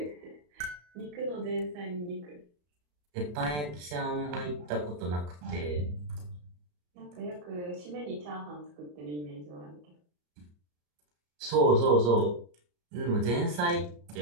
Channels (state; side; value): late; left; 34 ms